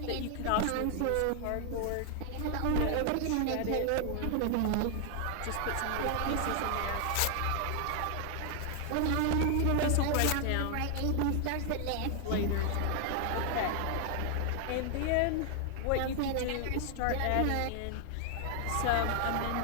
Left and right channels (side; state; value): both; different; correlation 0.00